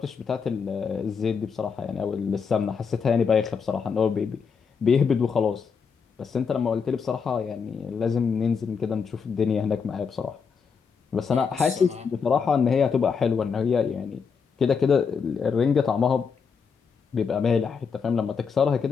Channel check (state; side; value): quieter; right; 5.9 dB